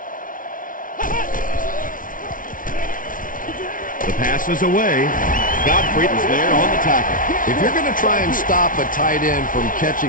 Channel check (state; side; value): late; right; 0.39 ms